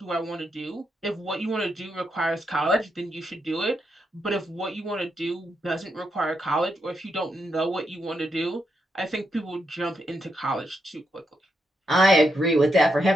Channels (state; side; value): normal; both; correlation 0.82